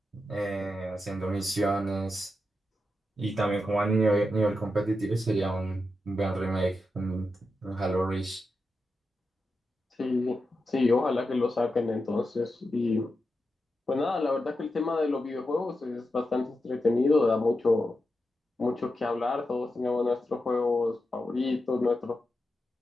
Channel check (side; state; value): both; normal; correlation 0.88